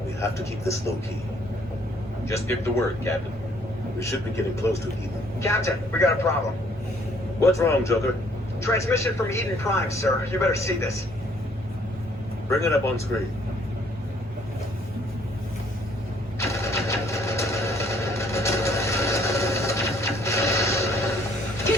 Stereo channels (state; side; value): normal; both; correlation 0.63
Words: We have to keep this low-key. Just give the word, Captain. We should be getting close to Eden. Captain, we got a problem. What's wrong, Joker? Transmission from Eden Prime, sir. You better see this. Bring it up on screen.